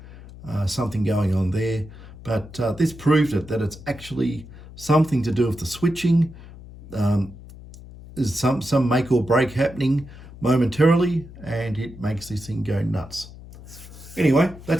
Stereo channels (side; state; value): left; noise; hum, 17 dB below the sound